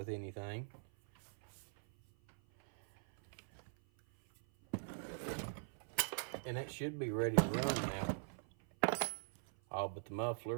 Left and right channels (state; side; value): silent; left; 50 dB below the other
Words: anything. And that should be ready to run now. All but the